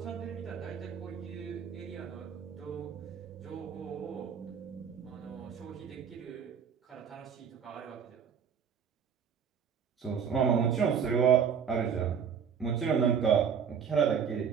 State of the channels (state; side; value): quieter; left; 7.2 dB